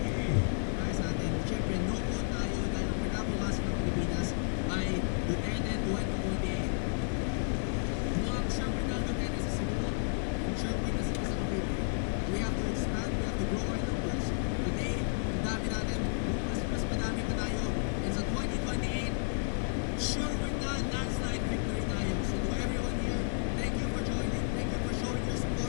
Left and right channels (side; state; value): right; silent; 56 dB below the other